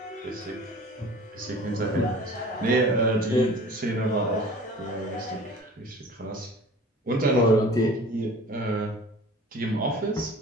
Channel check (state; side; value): normal; both; correlation 0.43